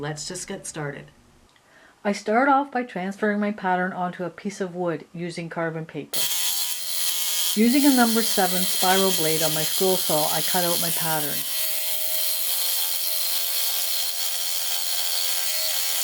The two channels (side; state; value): both; identical; correlation 1.00